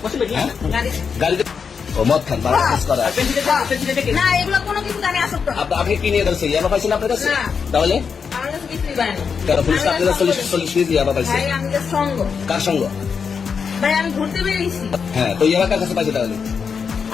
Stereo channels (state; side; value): quieter; right; 6.1 dB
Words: গাড়িতে ও মদ খান, বাড়া কেস করা। না, এগুলো কোনো কিছু আমি আসক্ত না। আপনি কি নিয়ে ধরছে? ইয়াবা পাইছেন আপনার কাছে? না। তাহলে আমার কাছে কিছুই পাই না। কেন পুলিশ আপনারা 40 মিনিট দিয়ে আবার পাইছে? ভাই আমি যে সঙ্গ, কার সঙ্গ? ভাই আমি ঘুরতে বেরিয়েছি। হ্যাঁ, তো ইয়াবা কার কাছে পাইছে তাহলে?